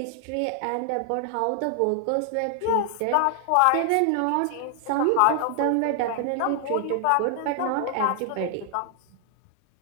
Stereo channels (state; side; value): different; both; correlation 0.00